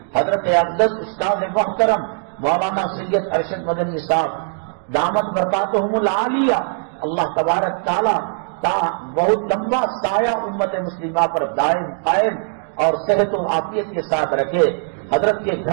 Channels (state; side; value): silent; left; digital silence